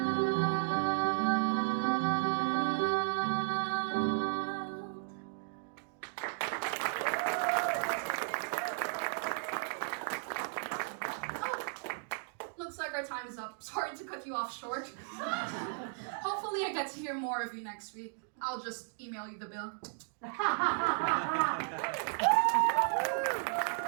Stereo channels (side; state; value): left; silent; digital silence